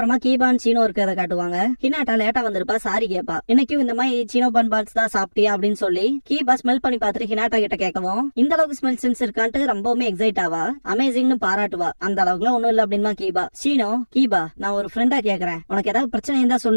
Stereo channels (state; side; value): inverted; both; correlation -1.00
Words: கீபான் சீனோ இருக்கிறத காட்டுவாங்க. ஹினாட்டா லேட்டா வந்திருப்பா, சாரி கேப்பா. இன்னைக்கும் இந்த மாதிரி சீனோ பன் பால்ஸ் தான் சாப்பிட்டியா அப்படின்னு சொல்லி கீபா ஸ்மெல் பண்ணி பார்த்துட்டு ஹினாட்டா கிட்ட கேட்கவும் இந்த அளவுக்கு ஸ்மெல் சென்ஸ் இருக்கான்ட்டு ரொம்பவுமே எக்ஸைட் ஆவா. அமேசிங்னு பாராட்டுவா. அந்த அளவுக்குலாம் ஒண்ணும் இல்ல அப்படிமா கீபா. சீனோ கீபா நான் ஒரு ஃப்ரெண்டா கேக்குறேன், உனக்கு ஏதாவது பிரச்சனை இருந்தா